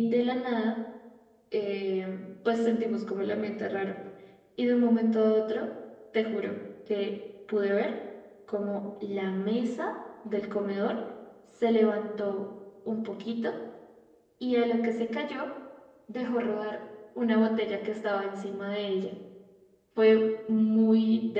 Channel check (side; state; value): both; identical; correlation 1.00